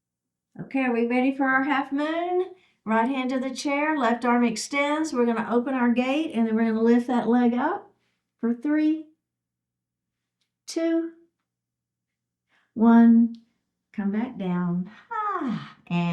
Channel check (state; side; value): identical; both; correlation 1.00